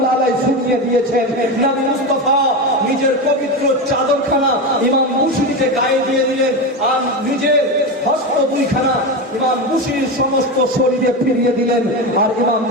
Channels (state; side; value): normal; both; correlation 0.18